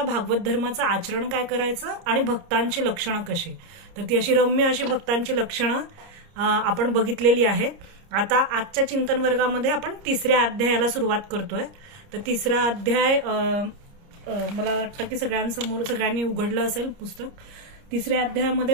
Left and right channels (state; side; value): late; left; 30 ms